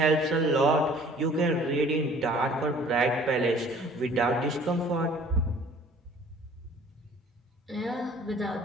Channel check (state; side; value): normal; both; correlation 0.52